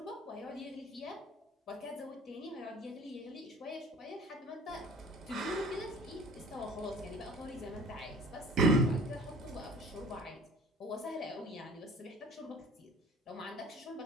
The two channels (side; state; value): both; normal; correlation 0.47